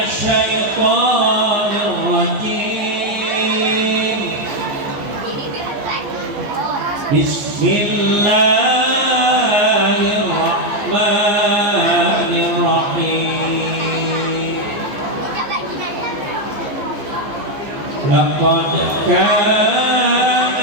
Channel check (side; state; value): left; late; 15 ms